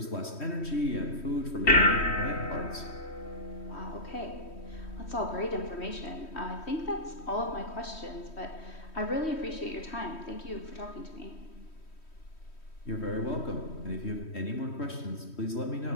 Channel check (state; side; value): late; right; 3.1 ms